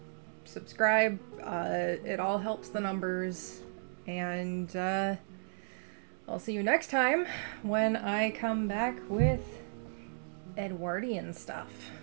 subscribe. It all helps the numbers. And I'll see you next time when I come back with Edwardian stuff.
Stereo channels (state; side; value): silent; left; digital silence